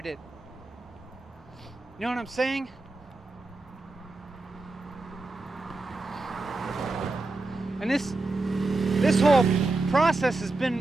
it. You know what I'm saying? And this whole process has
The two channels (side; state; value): left; quieter; 3.2 dB